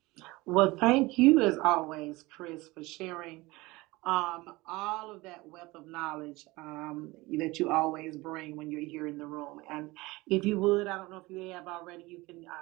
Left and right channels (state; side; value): quieter; left; 21.6 dB